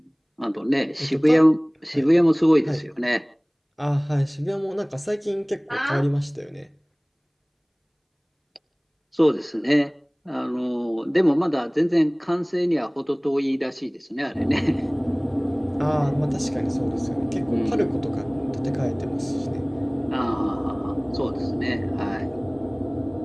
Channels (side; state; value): both; identical; correlation 1.00